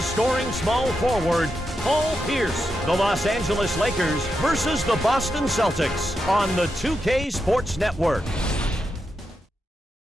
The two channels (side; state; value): both; normal; correlation 0.86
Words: small forward, Paul Pierce. The Los Angeles Lakers versus the Boston Celtics on the 2K Sports Network.